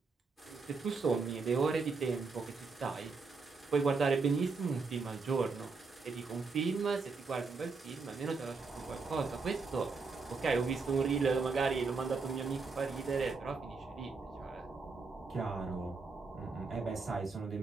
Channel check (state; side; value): quieter; left; 4.4 dB